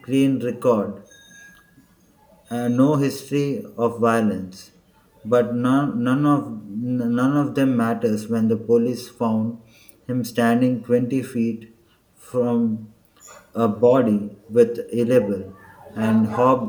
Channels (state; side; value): identical; both; correlation 1.00